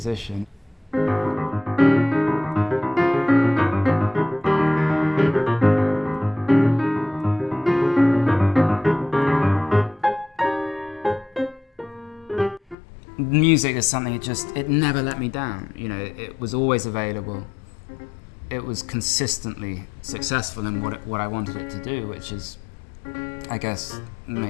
Music is something it never let me down. It was always available. It was consistently successful in what I wanted it to do, which is, I guess,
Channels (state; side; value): drops out; right; at 12.8 s